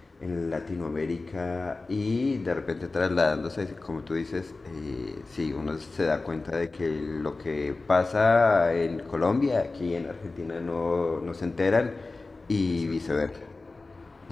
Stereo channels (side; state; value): right; quieter; 3.5 dB